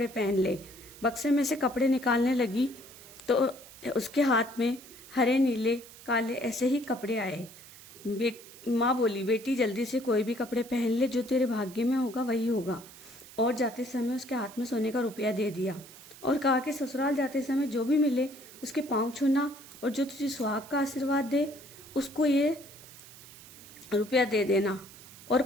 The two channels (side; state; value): right; noise; hiss, 19 dB below the sound